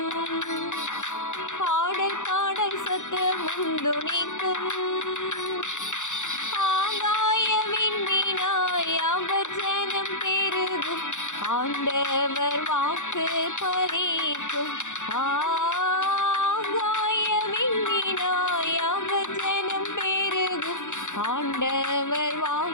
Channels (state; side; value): late; right; 0.85 ms